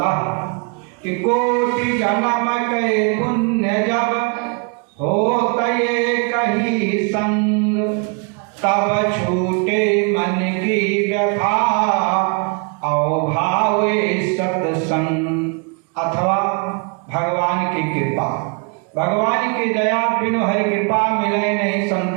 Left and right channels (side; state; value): left; quieter; 35.6 dB